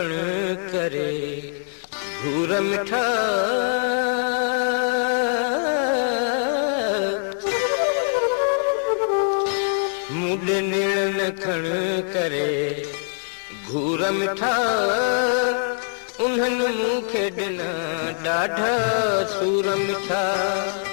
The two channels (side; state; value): right; silent; digital silence